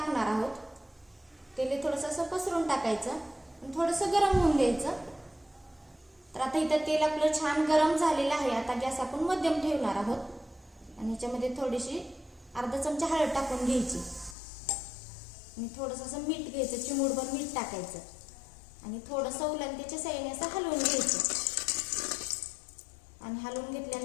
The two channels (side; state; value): right; drops out; at 14.4 s